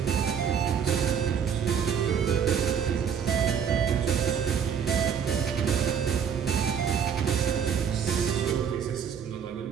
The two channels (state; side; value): quieter; left; 7.6 dB